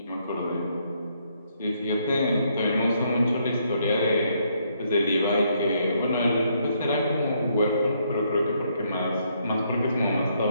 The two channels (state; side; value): inverted; both; correlation -0.72